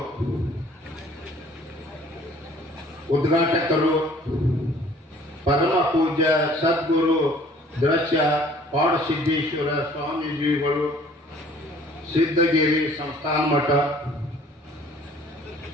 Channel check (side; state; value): both; normal; correlation 0.54